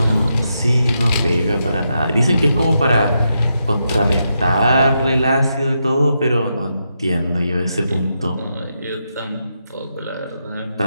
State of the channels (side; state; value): both; inverted; correlation -0.84